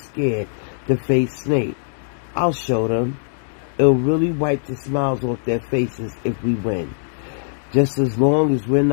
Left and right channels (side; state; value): right; silent; digital silence